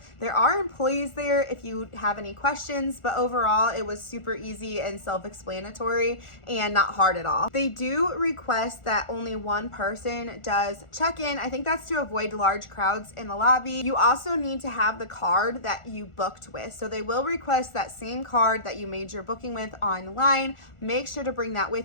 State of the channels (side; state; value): right; late; 1.4 ms